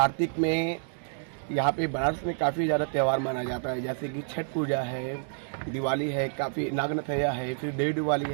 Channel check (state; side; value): silent; left; digital silence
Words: में यहाँ पे बनारस में काफ़ी ज़्यादा त्यौहार माना जाता है, जैसे कि छठ पूजा है, दिवाली है, काफ़ी नागनथैया है, फिर देवी दिवाली